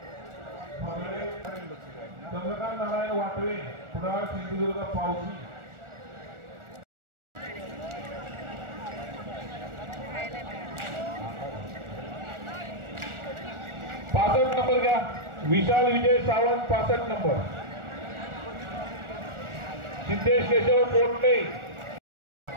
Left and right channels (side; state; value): left; late; 1.4 ms